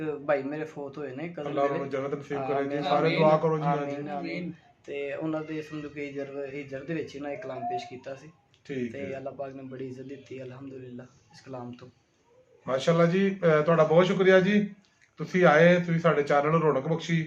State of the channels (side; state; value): both; identical; correlation 1.00